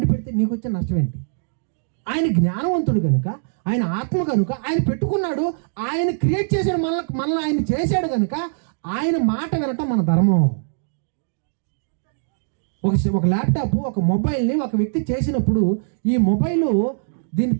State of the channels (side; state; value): left; silent; digital silence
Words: పెడితే నీకు వచ్చే నష్టం ఏంటి? ఆయన జ్ఞానవంతుడు కనుక, ఆయన ఆత్మ కనుక ఆయన పెట్టుకున్నాడు, ఆయన క్రియేట్ చేశాడు, మనల్ని ఆయన చేశాడు కనుక ఆయన మాట వినటం మన ధర్మం. ఒక ల్యాప్టాప్, ఒక మొబైల్ని ఒక వ్యక్తి చేసినప్పుడు ఈ మొబైల్ దీన్ని